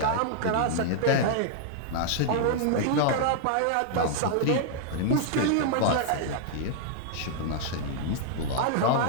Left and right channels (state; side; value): different; both; correlation -0.01